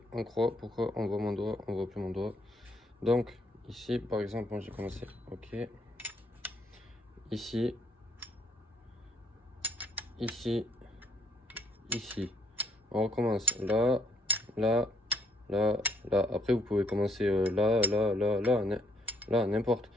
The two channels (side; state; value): both; normal; correlation 0.69